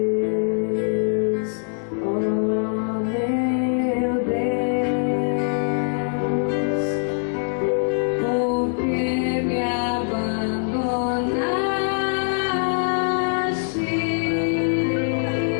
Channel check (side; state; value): right; silent; 63 dB below the other